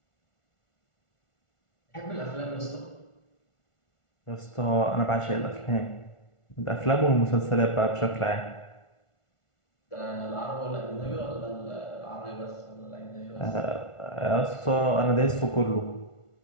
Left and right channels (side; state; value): right; late; 1.4 ms